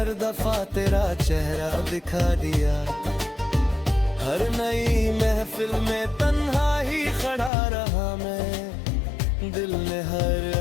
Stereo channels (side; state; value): right; drops out; at 7.5 s